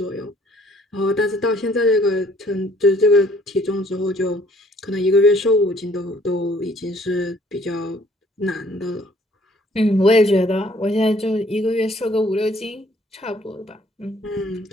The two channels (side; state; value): both; normal; correlation 0.60